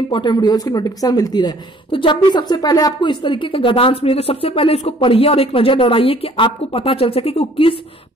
वीडियोस की नोटिफिकेशन मिलती रहे। तो जब भी सबसे पहले आपको इस तरीके का गद्यांश मिले तो सबसे पहले इसको पढ़िए और एक नजर दौड़ाइए कि आपको पता चल सके कि वो किस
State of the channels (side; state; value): both; normal; correlation 0.57